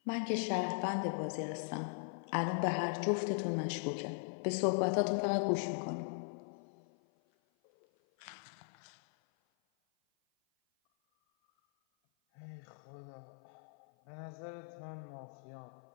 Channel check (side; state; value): right; silent; 52 dB below the other